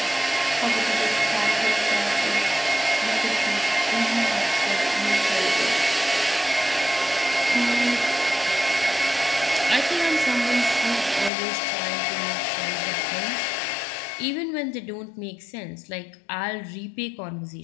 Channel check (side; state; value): right; drops out; at 11.3 s